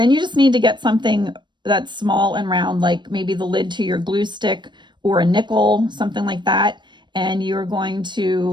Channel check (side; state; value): left; late; 0.22 ms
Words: you just need to get something that's small and round, like maybe the lid to your glue stick or a nickel, something like that. And you're going